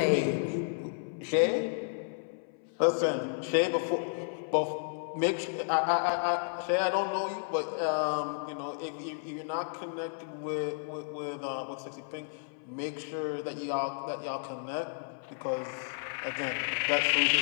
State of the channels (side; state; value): right; silent; 56 dB below the other